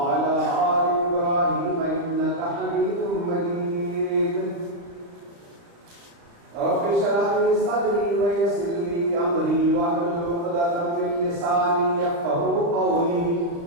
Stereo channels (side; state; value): left; late; 35 ms